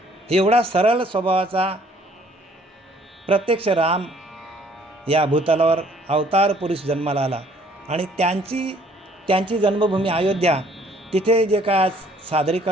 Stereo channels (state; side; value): normal; both; correlation 0.60